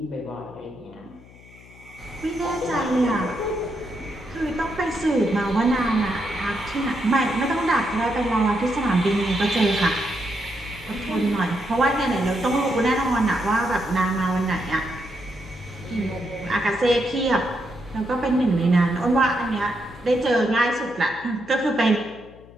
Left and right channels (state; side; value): noise; left; hum, 22 dB below the sound